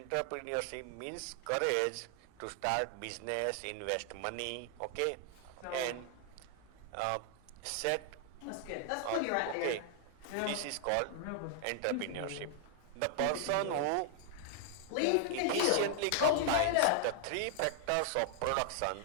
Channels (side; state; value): both; different; correlation 0.00